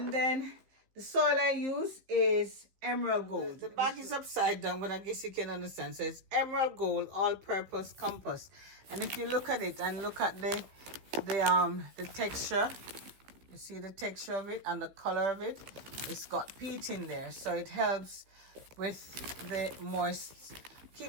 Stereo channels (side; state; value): left; late; 16 ms